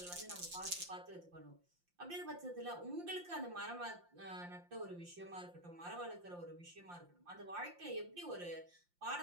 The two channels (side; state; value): left; late; 5.7 ms